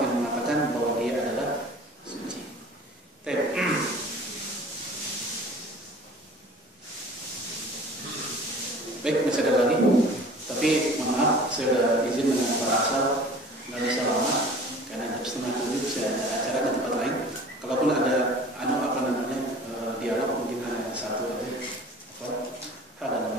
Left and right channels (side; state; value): both; normal; correlation 0.45